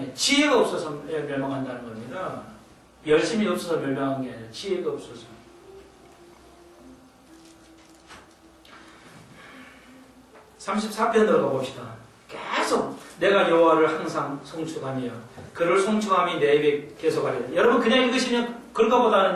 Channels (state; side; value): identical; both; correlation 1.00